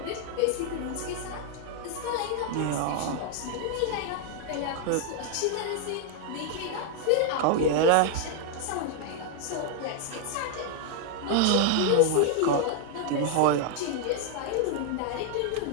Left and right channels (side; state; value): both; different; correlation 0.00